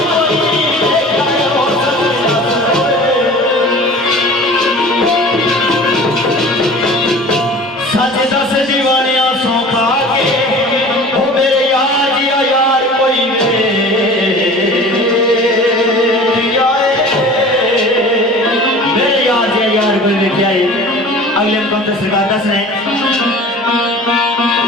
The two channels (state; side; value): normal; both; correlation 0.41